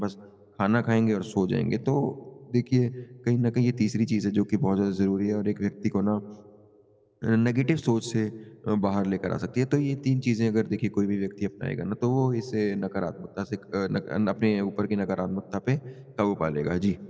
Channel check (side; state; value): both; identical; correlation 1.00